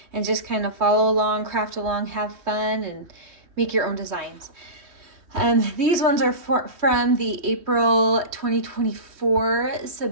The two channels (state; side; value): late; left; 3.1 ms